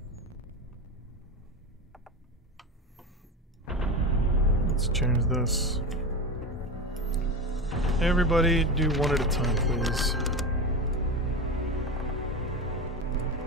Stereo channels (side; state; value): both; normal; correlation 0.23